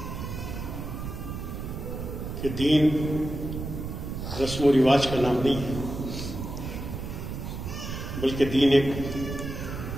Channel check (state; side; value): noise; right; rumble, 6 dB below the sound